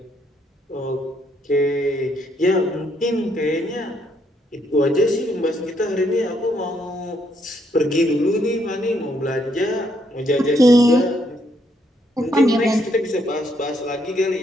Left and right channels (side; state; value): both; normal; correlation 0.73